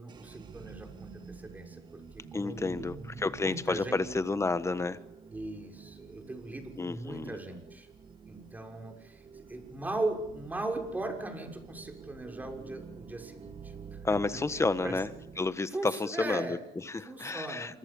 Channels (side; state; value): both; normal; correlation 0.75